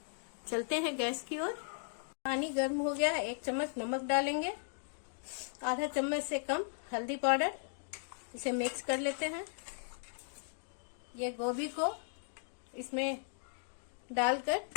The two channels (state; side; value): silent; right; digital silence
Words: चलते हैं गैस की ओर। पानी गर्म हो गया। 1 चम्मच नमक डालेंगे, आधा चम्मच से कम हल्दी पाउडर। इसे मिक्स कर लेते हैं। ये गोभी को इसमें डालकर